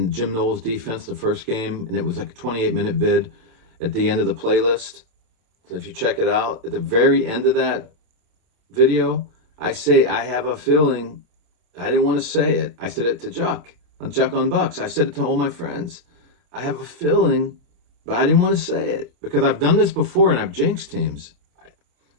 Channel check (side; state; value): left; late; 27 ms